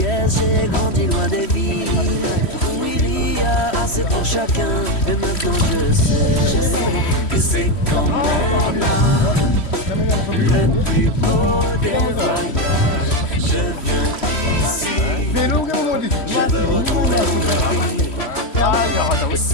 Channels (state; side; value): late; right; 3.1 ms